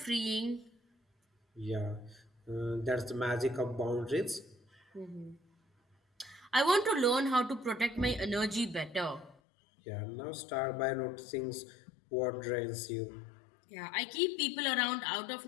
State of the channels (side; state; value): right; drops out; at 9.3 s